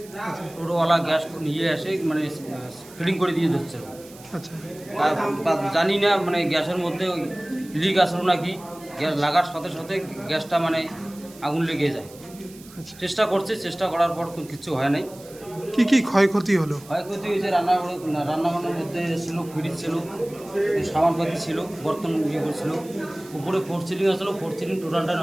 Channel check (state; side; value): noise; right; hiss, 21 dB below the sound